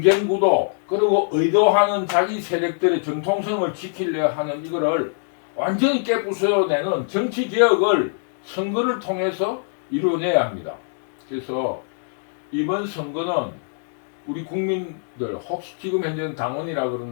구도 그리고 의도하는 자기 세력들의 정통성을 지키려 하는 이거를 완전히 깨부숴내는 정치 개혁을 선거를 통해서 이루어내야 합니다. 그래서 이번 선거는 우리 국민들, 혹시 지금 현재는 당원이라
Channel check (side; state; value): right; silent; digital silence